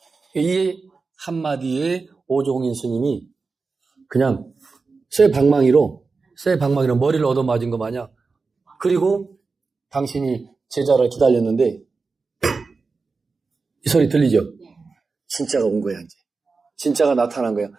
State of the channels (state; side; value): quieter; left; 4.3 dB